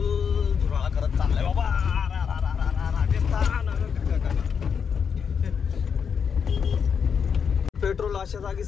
धुराळा करत चाललाय बाबा. पेट्रोल अशा जागी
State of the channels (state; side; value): quieter; right; 6.7 dB